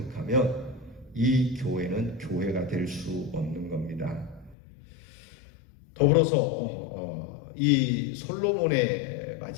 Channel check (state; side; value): drops out; right; at 4.5 s